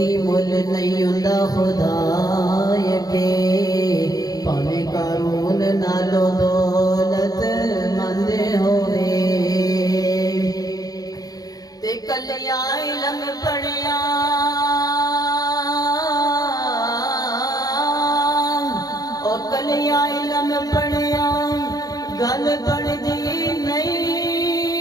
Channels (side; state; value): right; late; 0.18 ms